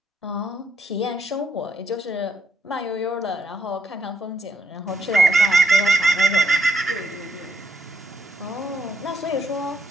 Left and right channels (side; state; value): both; normal; correlation 0.75